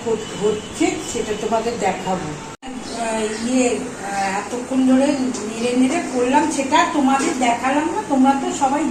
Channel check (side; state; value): both; identical; correlation 1.00